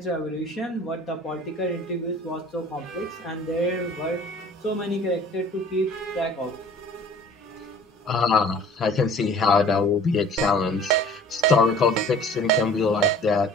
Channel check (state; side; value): normal; both; correlation 0.48